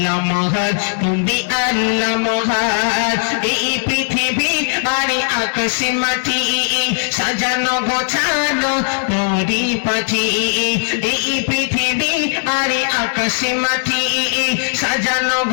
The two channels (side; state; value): right; silent; digital silence